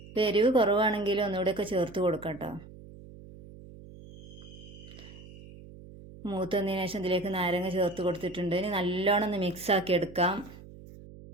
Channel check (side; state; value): right; noise; hum, 18 dB below the sound